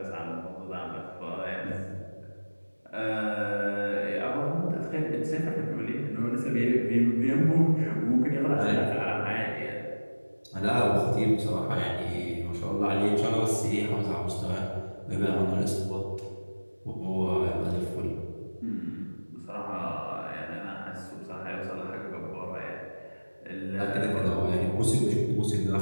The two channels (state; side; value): inverted; both; correlation -1.00